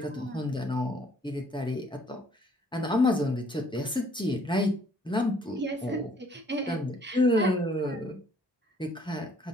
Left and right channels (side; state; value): both; normal; correlation 0.62